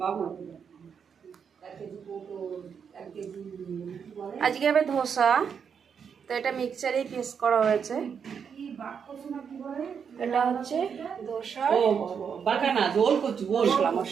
আজকে হবে ধোসা, তো এটা মিক্সচারেই পেস্ট করা হয়েছে। এটা হচ্ছে ধোসা, ও বাগানা জোল কচু, মশলা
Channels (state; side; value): quieter; left; 6.9 dB